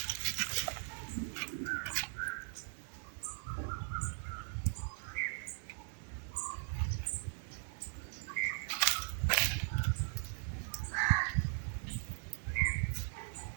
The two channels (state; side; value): silent; left; digital silence